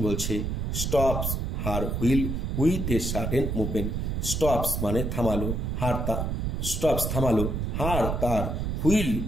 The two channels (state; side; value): noise; right; rumble, 1 dB below the sound